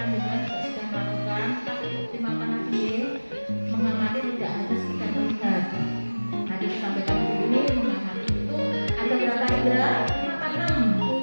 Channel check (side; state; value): both; inverted; correlation -1.00